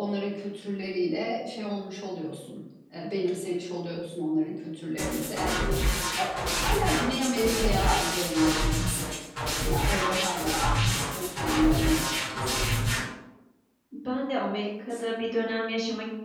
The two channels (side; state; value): both; identical; correlation 1.00